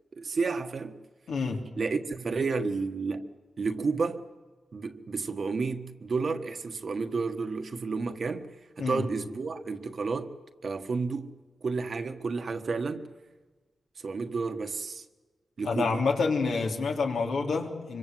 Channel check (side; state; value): both; normal; correlation 0.87